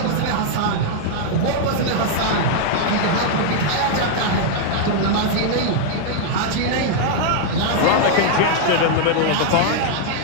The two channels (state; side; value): different; both; correlation 0.00